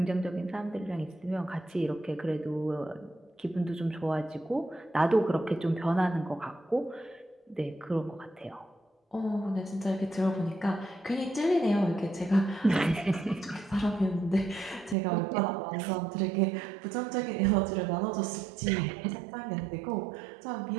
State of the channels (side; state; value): left; drops out; at 15.0 s